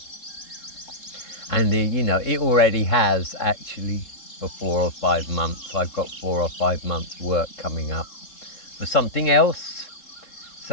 And you know, it already has, actually, for 4 or 5 months. I've got 4 or 5 months work coming up. for something else.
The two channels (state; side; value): late; right; 3.7 ms